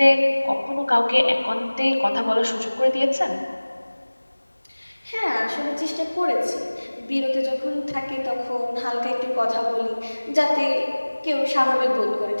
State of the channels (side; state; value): both; inverted; correlation -1.00